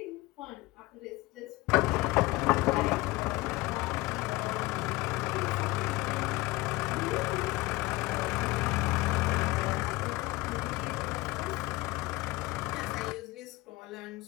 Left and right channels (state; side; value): quieter; right; 20.9 dB